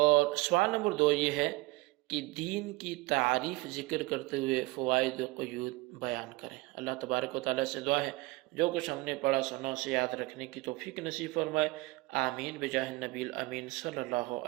سوال نمبر 2 یہ ہے کہ دین کی تعریف ذکر کرتے ہوئے فوائد و قیود بیان کریں۔ اللہ تبارک و تعالیٰ سے دعا ہے جو کچھ ہم نے پڑھا سنا اسے یاد رکھنے کی توفیق نصیب فرمائے، آمین بجاہ النبی الامین صلی اللہ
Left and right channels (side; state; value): left; quieter; 22.0 dB